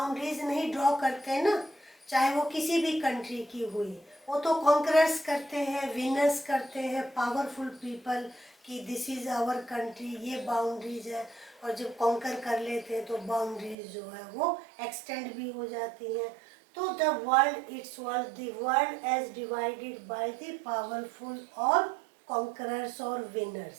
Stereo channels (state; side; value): drops out; left; at 13.8 s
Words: नहीं ड्रॉ करते हैं ना, चाहे वो किसी भी कंट्री की हुई, वो तो कॉन्करर्स करते हैं, विनर्स करते हैं, पावरफुल पीपल कि दिस इज आवर कंट्री, ये बाउंड्रीज है. और जब कॉन्कर कर लेते हैं तो बाउंड्रीज जो है वो एक्सटेंड भी हो जाती हैं. तो the world it's world, the world as divided by the powerful और कॉन्करर्स और